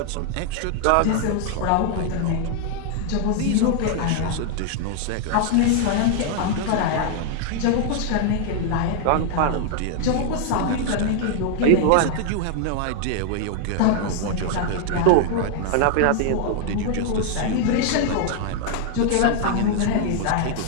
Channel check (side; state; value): both; different; correlation 0.00